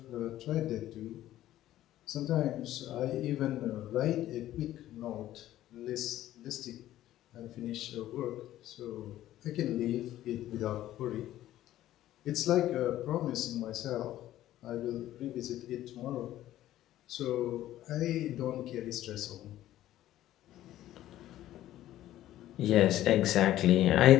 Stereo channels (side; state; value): right; quieter; 13.7 dB